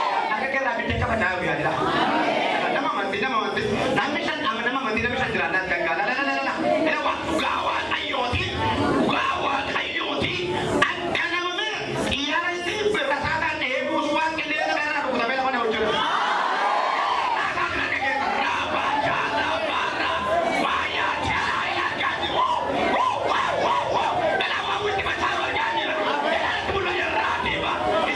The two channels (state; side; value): identical; both; correlation 1.00